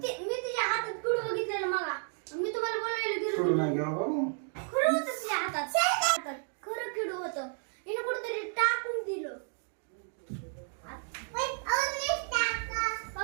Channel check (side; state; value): left; silent; 56 dB below the other